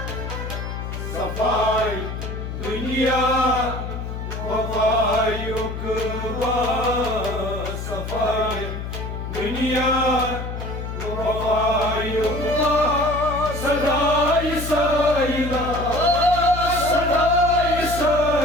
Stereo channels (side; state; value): left; noise; hum, 6 dB below the sound